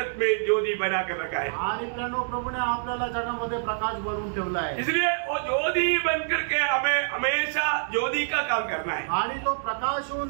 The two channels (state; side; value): silent; left; digital silence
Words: में ज्योति बना कर रखा है, आणि प्रियानो, प्रभूने आपल्याला जगामध्ये प्रकाश बनवून ठेवला आहे। इसलिए वो ज्योति बन करके हमें हमेशा ज्योति का काम करना है। आणि तो प्रकाश होऊन